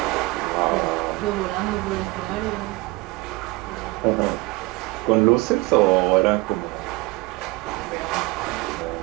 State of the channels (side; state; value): left; quieter; 22.3 dB